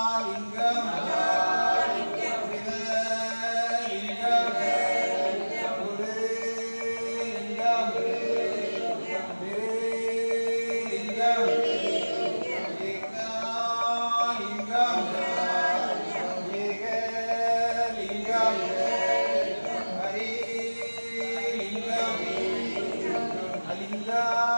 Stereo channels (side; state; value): both; inverted; correlation -1.00